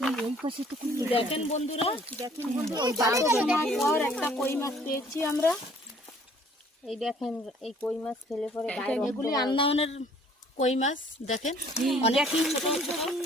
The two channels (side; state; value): both; normal; correlation 0.57